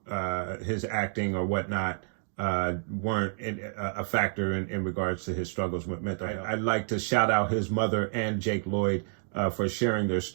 his acting or whatnot weren't a factor in regards to his struggles with mental health. I'd like to shout out his mother and Jake Lloyd for sharing their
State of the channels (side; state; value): left; silent; digital silence